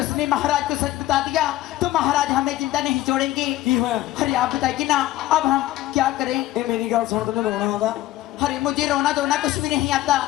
उसने महाराज को सच बता दिया तो महाराज हमें चिंता नहीं छोड़ेंगे। की होया? अरे आप बताइए ना अब हम क्या करें? ये मेरी गल सुन तने रोना आंदा अरे मुझे रोना धोना कुछ भी नहीं आता।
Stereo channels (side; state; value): right; quieter; 15.3 dB